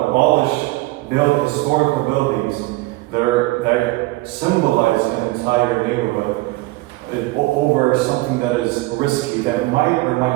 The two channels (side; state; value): left; quieter; 20.8 dB